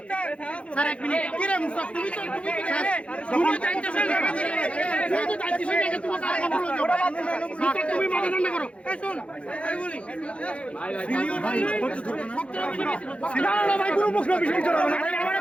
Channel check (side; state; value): right; late; 0.061 ms